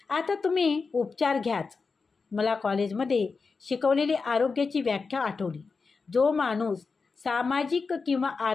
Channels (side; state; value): right; quieter; 4.6 dB